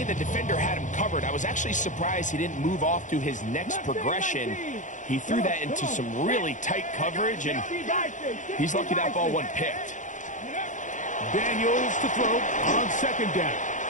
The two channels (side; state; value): right; late; 0.36 ms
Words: the defender had him covered, I was actually surprised he didn't move off to his next progression. He threw that into some really tight coverage, and he's lucky that ball wasn't picked. Daniels to throw on second down.